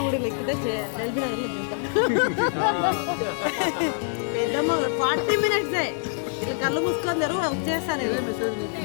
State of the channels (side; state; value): right; silent; digital silence